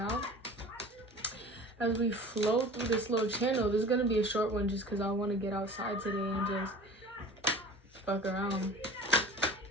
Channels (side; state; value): both; normal; correlation 0.41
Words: As we flow through this little channel, this is gonna be a short one just because I want to get outside today and just fuck around.